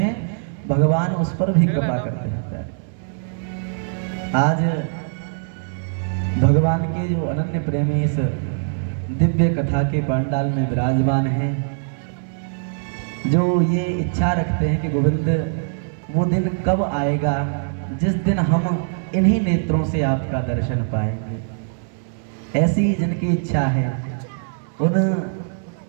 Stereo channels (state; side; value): silent; left; digital silence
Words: भगवान उस पर भी कृपा करते हैं। आज भगवान के जो अनन्य प्रेमी इस दिव्य कथा के पांडाल में विराजमान हैं, जो ये इच्छा रखते हैं कि गोविंद वो दिन कब आएगा जिस दिन हम इन्हीं नेत्रों से आपका दर्शन पाएंगे, ऐसी जिनकी इच्छा है, उन